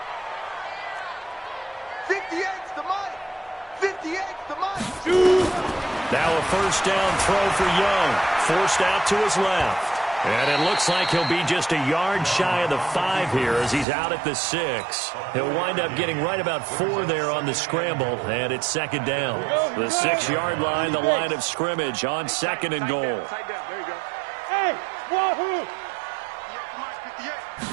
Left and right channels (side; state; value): left; drops out; at 13.9 s